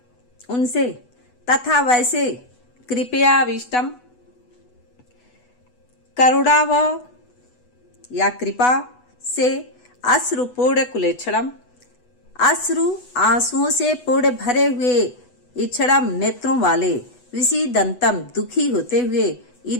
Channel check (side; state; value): right; late; 8.1 ms